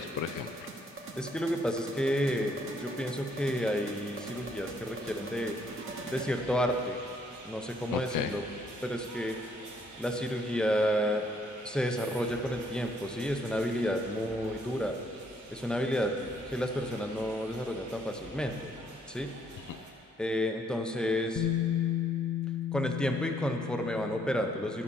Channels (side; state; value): both; normal; correlation 0.68